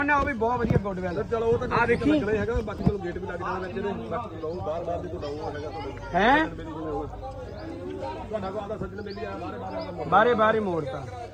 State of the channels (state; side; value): identical; both; correlation 1.00